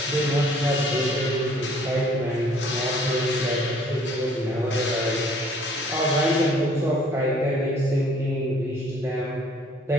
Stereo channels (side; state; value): both; normal; correlation 0.57